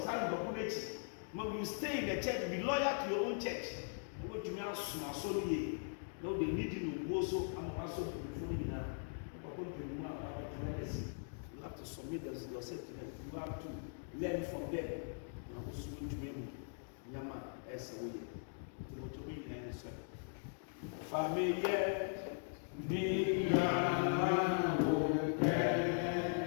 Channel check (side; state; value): right; silent; digital silence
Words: But you stay in the church, be loyal to your own church. What you mean, so no, they need you to go so I'm also before you now. You have to submit yourself to them. You have to learn from them. I'm also going to be Yama as a way. To be in an answer. Familiar,